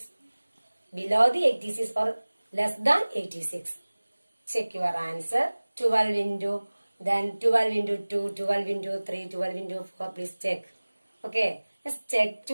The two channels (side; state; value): both; inverted; correlation -1.00